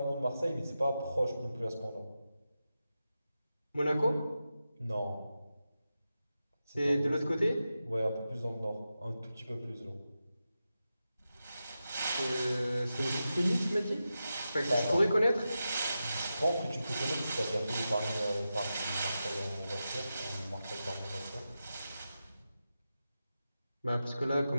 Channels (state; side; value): inverted; both; correlation -0.91